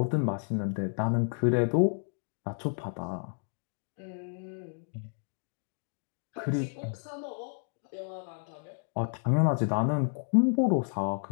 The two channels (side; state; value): right; silent; 57 dB below the other